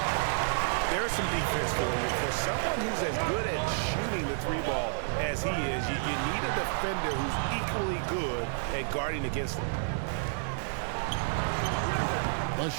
There's some defense for you. For someone who's as good at shooting the three ball as he is, you need a defender who's equally good at guarding against him. The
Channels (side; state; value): left; silent; 58 dB below the other